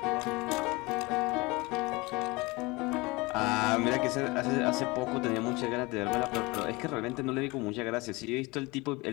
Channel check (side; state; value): right; quieter; 24.0 dB